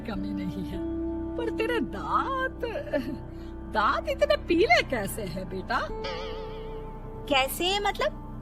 नहीं है, पर तेरे दांत इतने पीले कैसे हैं बेटा? कैसे मतलब?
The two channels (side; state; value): both; identical; correlation 1.00